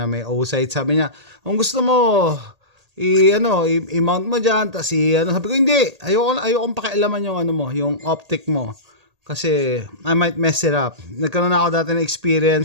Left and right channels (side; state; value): left; late; 1.8 ms